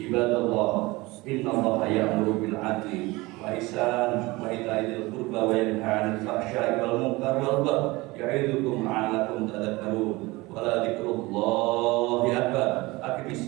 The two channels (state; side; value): quieter; left; 22.1 dB